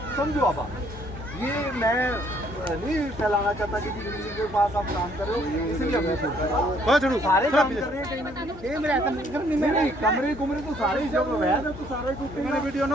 समझो। अब ये मैं नहीं फैलाना चाहता कि जी किसी के पास आप काम कर रहे हो, इसलिए मैं सारे काम कर रहे हैं कहीं नहीं, कमरे कुमरे तो सारे जब वैध है तो सारे टूटेंगे। वीडियो ना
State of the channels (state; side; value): noise; left; hum, 16 dB below the sound